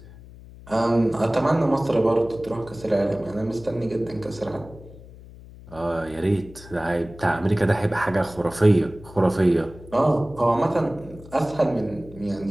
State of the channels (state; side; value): noise; left; hum, 19 dB below the sound